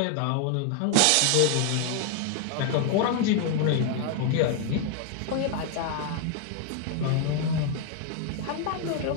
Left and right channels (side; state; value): both; different; correlation 0.00